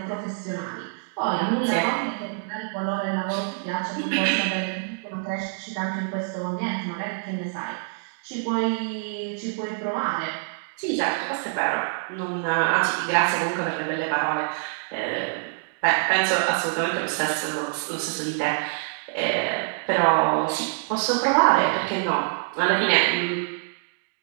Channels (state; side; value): silent; left; digital silence